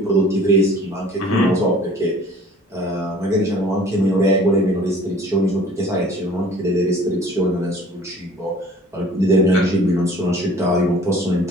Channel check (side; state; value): both; normal; correlation 0.49